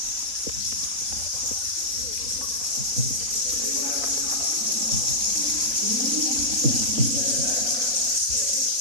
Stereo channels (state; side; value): late; left; 4.1 ms